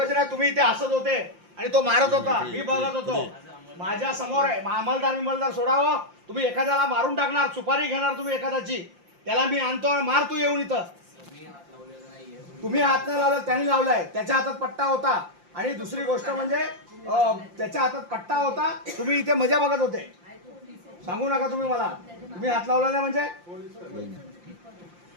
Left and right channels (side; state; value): left; late; 5.7 ms